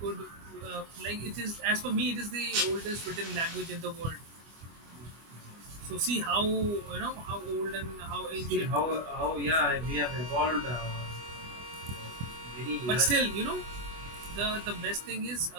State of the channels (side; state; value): left; late; 25 ms